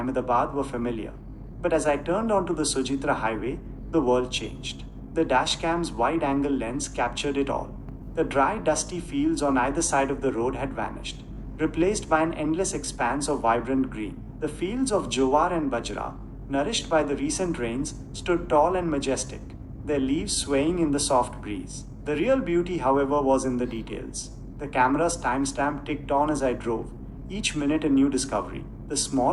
were familiar, but as I turned onto the Sujitra highway, the world changed. The dashcam's wide angle lens captured it all. The dry, dusty fields on either side of the road had vanished, replaced by an endless expanse of vibrant green. The fields of Jowar and Bajra, nourished by the recent rains, stood tall and majestic, their leaves swaying in the soft breeze. The real beauty, however, was in the details. The camera's timestamp ticked on as I drove, each minute a new discovery. The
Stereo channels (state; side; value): identical; both; correlation 1.00